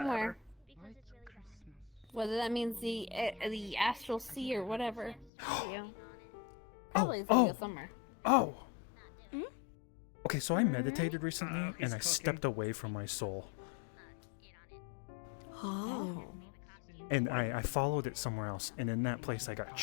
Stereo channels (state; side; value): drops out; right; at 5.3 s